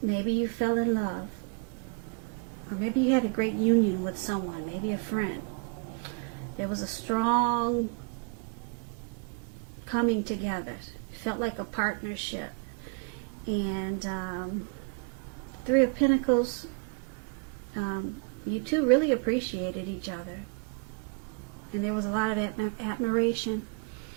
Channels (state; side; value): quieter; left; 37.7 dB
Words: Maybe you fell in love, or maybe you had a great union with someone, maybe a friend. There was a strong coming together. It felt like a partnership. And Three of Pentacles, you two really appreciated each other, and there was a lot of admiration.